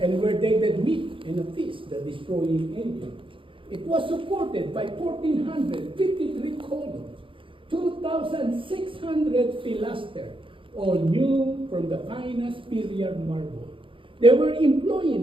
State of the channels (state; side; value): late; left; 0.25 ms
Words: where they did meet in a feast, the destroying angel. It was supported by 1,453 columns, 2,600 pilasters, all new from the finest period marble. They were